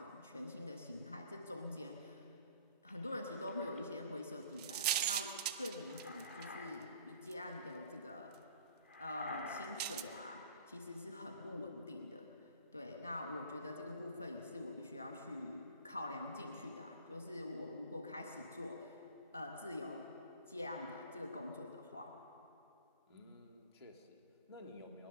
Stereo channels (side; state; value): both; inverted; correlation -0.49